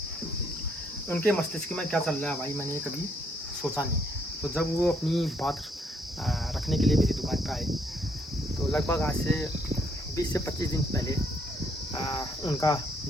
उनके मस्तिष्क में क्या चल रहा है भाई मैंने कभी सोचा नहीं। तो जब वो अपनी बात रखने के लिए मेरी दुकान पे आए, तो लगभग आज से 20 से 25 दिन पहले उनका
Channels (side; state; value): both; normal; correlation 0.70